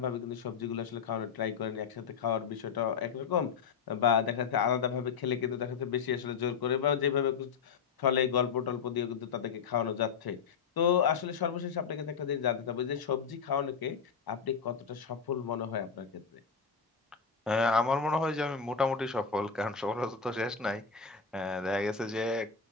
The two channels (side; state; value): right; quieter; 6.1 dB